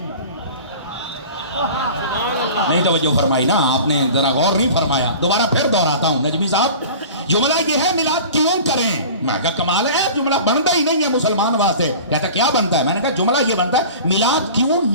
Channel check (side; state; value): both; inverted; correlation -0.39